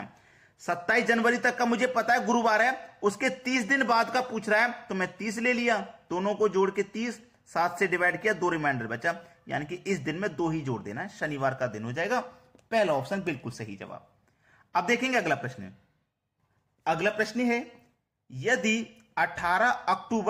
27 जनवरी तक का मुझे पता है गुरुवार है, उसके 30 दिन बाद का पूछ रहा है, तो मैं 30 ले लिया, दोनों को जोड़ के 30, 7 से डिवाइड किया, 2 रिमाइंडर बचा, यानी कि इस दिन में 2 ही जोड़ देना है, शनिवार का दिन हो जाएगा। पहला ऑप्शन बिल्कुल सही जवाब। अब देखेंगे अगला प्रश्न। अगला प्रश्न है, यदि 18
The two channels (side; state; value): both; identical; correlation 1.00